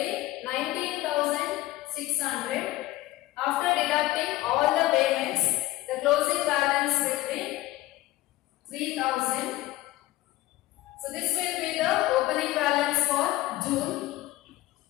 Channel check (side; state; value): right; quieter; 17.0 dB